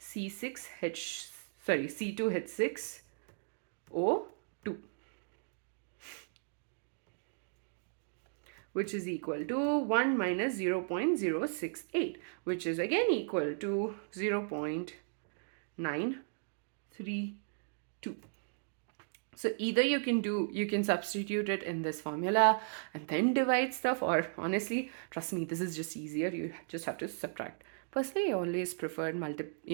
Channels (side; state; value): left; silent; digital silence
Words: which is equal to 1 minus 0.068, which is again equal to 0.932. So either you can substitute it in this formula and then divide stuff, or honestly, trust me, this is just easier. You just have to subtract. Personally, I always preferred